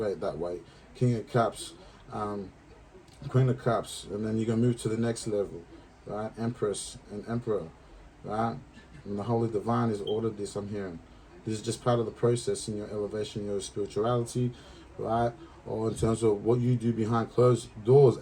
that way. King of Cups, Queen of Cups, and then you're going to move to the next level, right? Empress and Emperor, right? And the Holy Divine has ordered this, I'm hearing. This is just part of the process in your elevation, your spirituality, right? Or in terms of what you do behind closed doors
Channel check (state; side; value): identical; both; correlation 1.00